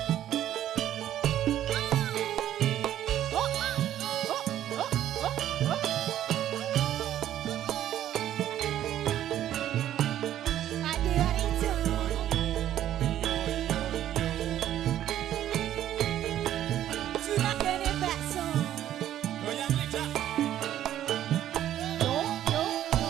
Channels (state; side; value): quieter; left; 11.8 dB